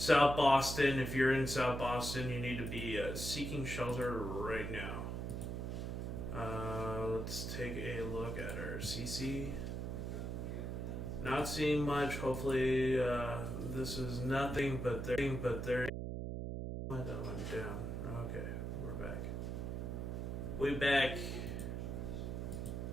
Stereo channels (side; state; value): right; noise; hum, 3 dB below the sound